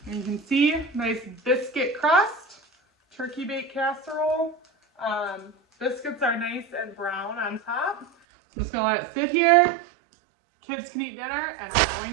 And you can see, nice biscuit crust, turkey bake casserole. Biscuits are nice and brown on top. I'm just gonna let it sit here. Kids can eat dinner, and I'm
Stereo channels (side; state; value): left; drops out; at 8.1 s